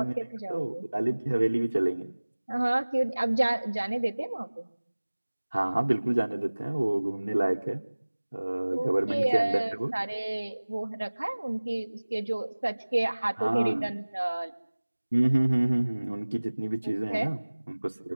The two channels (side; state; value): both; inverted; correlation -1.00